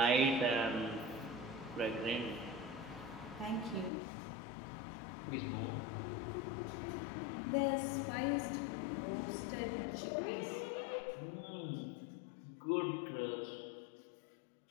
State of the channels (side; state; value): right; drops out; at 3.9 s